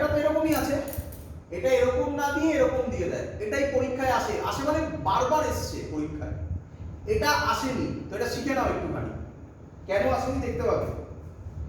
তো এরকমই আছে, এটা এরকম না দিয়ে এরকম দিয়ে দেয়, এটাই পরীক্ষায় আসে, আসে মানে বারবার এসছে পরীক্ষায়, এটা আসেনি, তো এটা শিখে নাও একটুখানি, কেন আসেনি দেখতে পাবে,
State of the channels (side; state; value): both; identical; correlation 1.00